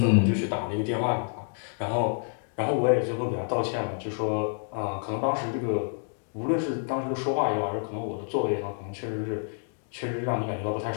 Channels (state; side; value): silent; right; 59 dB below the other